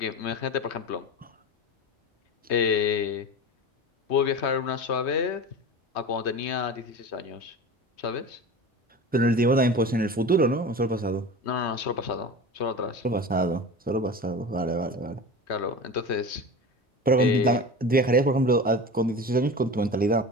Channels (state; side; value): normal; both; correlation 0.31